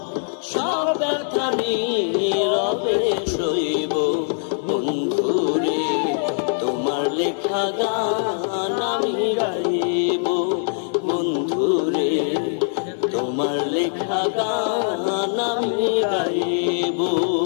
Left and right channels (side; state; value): right; silent; 64 dB below the other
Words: সব ব্যথা নীরবে সইব বন্ধুরে, তোমার লেখা গান আমি গাইব বন্ধুরে, তোমার লেখা গান আমি গাইব।